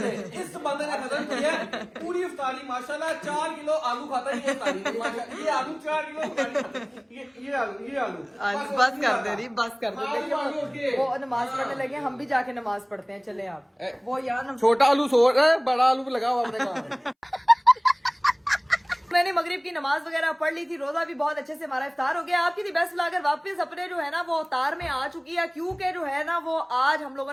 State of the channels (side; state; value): both; identical; correlation 1.00